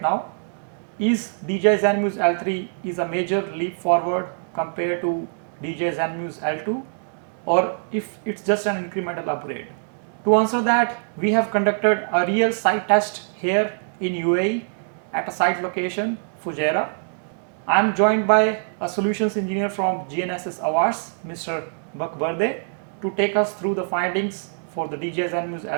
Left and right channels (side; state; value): left; silent; digital silence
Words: Is DJI Zenmuse L3 is a major leap forward compared to DJI Zenmuse L2, or if it's just an incremental upgrade? To answer that, we have conducted a real site test here in UAE at a site location, Fujairah. I am joined by a solutions engineer from GNSS Awards, Mr. Bakberde, to take us through the findings for the DJI Zenmuse